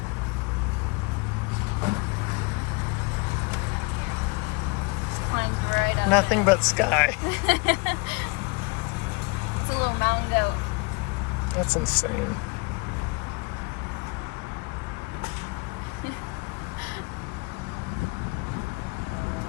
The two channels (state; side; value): quieter; right; 29.3 dB